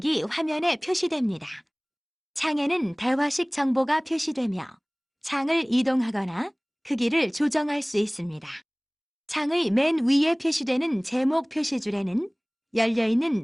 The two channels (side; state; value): both; identical; correlation 1.00